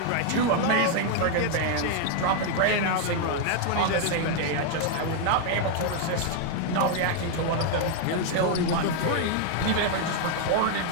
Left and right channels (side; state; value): both; different; correlation 0.00